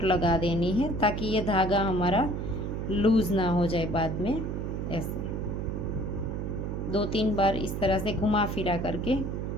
लगा देनी है ताकि ये धागा हमारा लूज़ ना हो जाए बाद में। ऐसे 2-3 बार इस तरह से घुमा फिरा करके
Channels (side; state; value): right; noise; hum, 3 dB below the sound